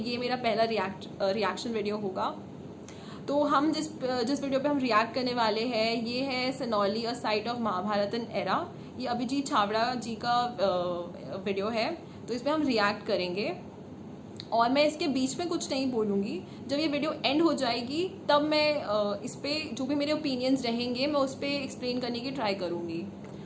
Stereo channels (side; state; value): both; identical; correlation 1.00